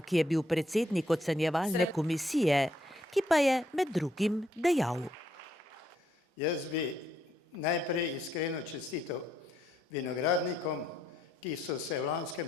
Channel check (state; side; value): normal; both; correlation 0.73